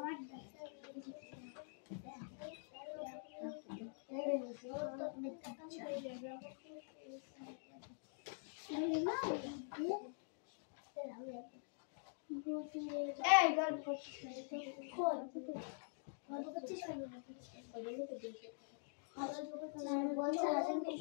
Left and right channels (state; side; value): silent; right; digital silence